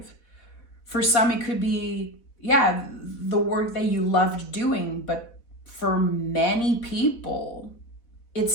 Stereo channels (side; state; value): right; late; 4.0 ms